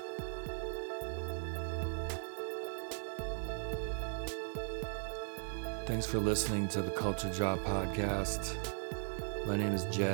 Thanks for listening to the Culture Drop podcast. My name is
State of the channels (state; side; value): silent; left; digital silence